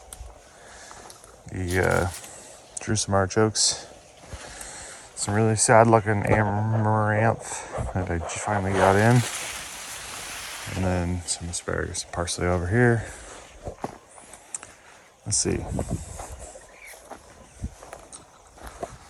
The Jerusalem artichokes. Some really sad looking amaranth that I just finally got in. And then some asparagus and parsley over here. Let's see.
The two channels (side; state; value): both; identical; correlation 1.00